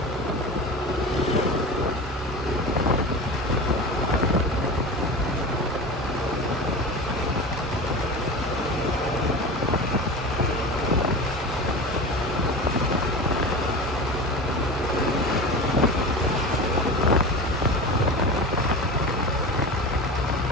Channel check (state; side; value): normal; both; correlation 0.30